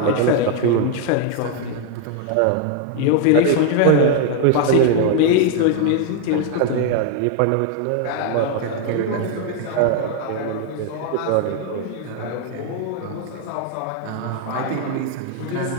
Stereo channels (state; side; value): different; both; correlation 0.01